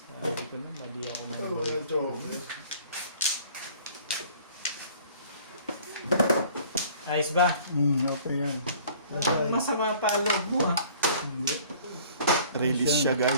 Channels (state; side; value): inverted; both; correlation -0.52